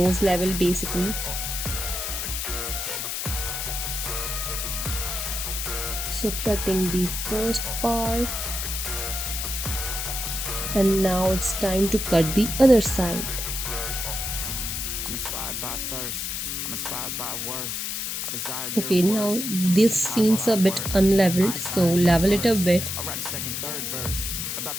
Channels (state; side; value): noise; left; hiss, 3 dB below the sound